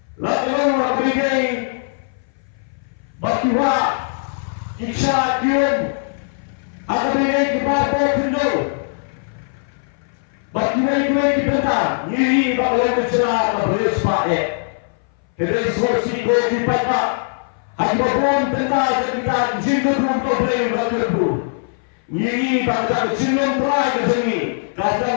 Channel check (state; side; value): silent; right; 59 dB below the other